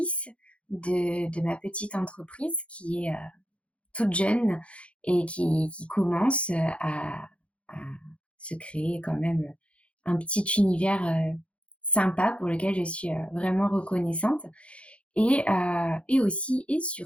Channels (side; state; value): right; late; 0.061 ms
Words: de ma petite entreprise qui est toute jeune et qui commence à se créer quand même un petit univers sympa pour lequel je suis vraiment reconnaissante. Et aussi et